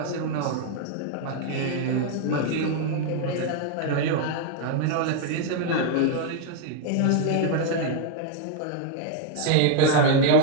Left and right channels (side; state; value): both; different; correlation 0.00